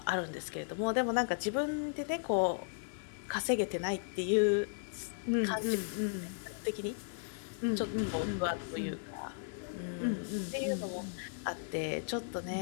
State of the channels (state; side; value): silent; right; digital silence